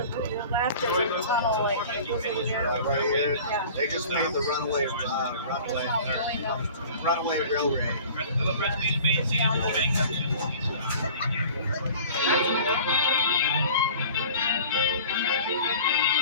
left, there's a tunnel like over here. Right here, Yeah. they just made the runaway railway.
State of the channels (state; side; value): inverted; both; correlation -0.44